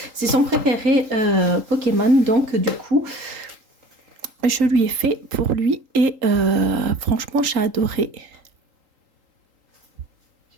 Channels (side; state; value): left; late; 3.8 ms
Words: C'est son préféré Pokémon, donc du coup, je lui ai fait pour lui et franchement, j'ai adoré.